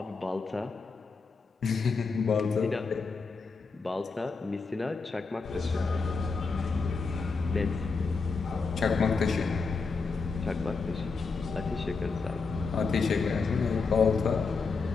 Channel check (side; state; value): right; quieter; 4.6 dB